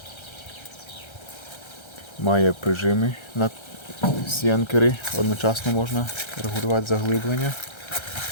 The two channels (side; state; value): right; late; 1.3 ms